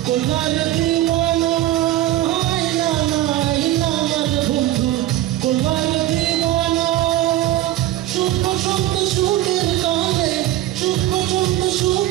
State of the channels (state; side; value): quieter; left; 14.4 dB